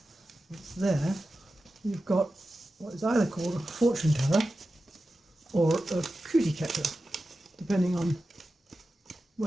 it's there. You've got what is either called a fortune teller or a cootie catcher, depending on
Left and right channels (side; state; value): both; normal; correlation 0.93